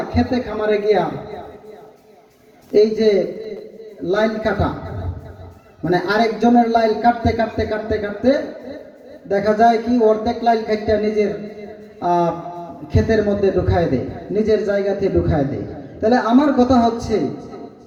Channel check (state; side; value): identical; both; correlation 1.00